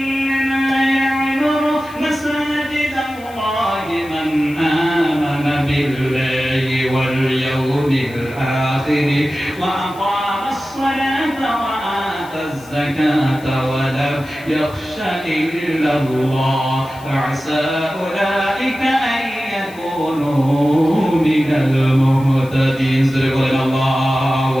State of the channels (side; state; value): left; noise; hiss, 23 dB below the sound